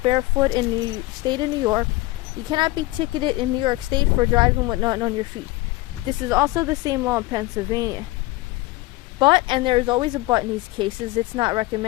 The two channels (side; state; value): right; quieter; 19.6 dB